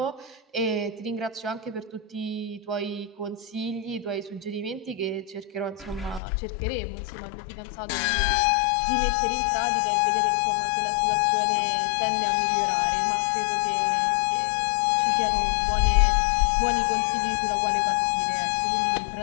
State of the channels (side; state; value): right; drops out; at 6.2 s